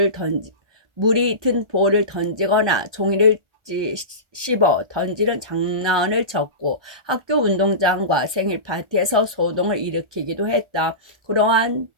볼을 던지거나 종이를 씹어 던지는 장난을 쳤고 학교 운동장과 생일 파티에서 소동을 일으키기도 했다. 그러한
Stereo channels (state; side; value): late; left; 1.4 ms